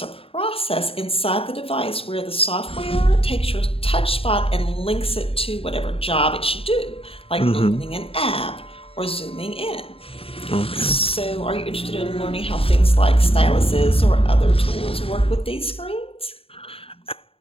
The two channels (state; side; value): late; right; 0.27 ms